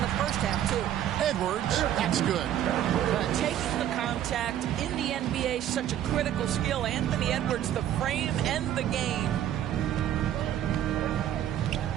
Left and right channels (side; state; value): left; quieter; 11.2 dB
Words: the first half, too. Edwards, that's good. Taking the contact in the NBA, such a critical skill. Anthony Edwards, the frame and the game.